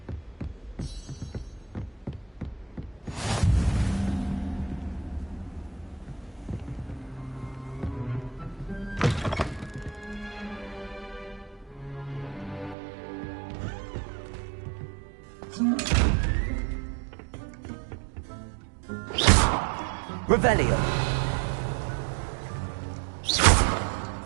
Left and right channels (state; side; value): drops out; left; at 12.8 s